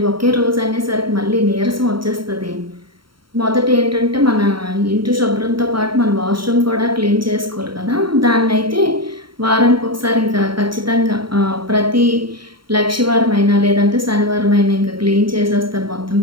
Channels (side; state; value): left; late; 0.73 ms